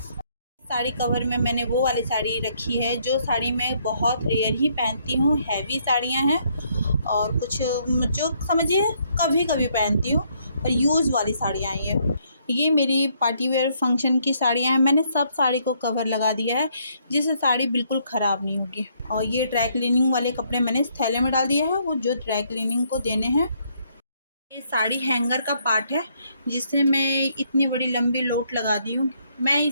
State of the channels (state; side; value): inverted; both; correlation -0.70